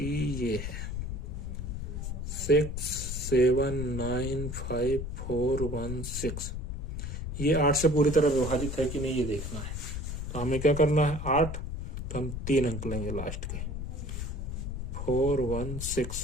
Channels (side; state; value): left; noise; rumble, 5 dB below the sound